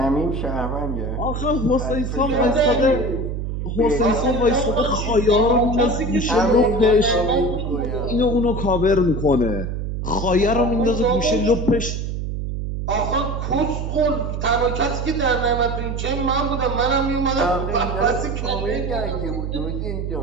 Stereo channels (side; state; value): right; noise; hum, 4 dB below the sound